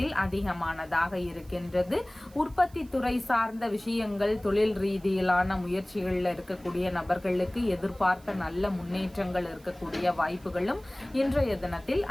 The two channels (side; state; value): right; noise; hiss, 27 dB below the sound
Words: அதிகமானதாக இருக்கின்றது. உற்பத்தி துறை சார்ந்த விஷயங்கள், தொழில் ரீதியிலான முயற்சிகள்ல இருக்கக்கூடிய நபர்களுக்கு எதிர்பார்த்த நல்ல முன்னேற்றங்கள் இருக்கக்கூடிய வாய்ப்புகளும் இன்றைய தினத்தில்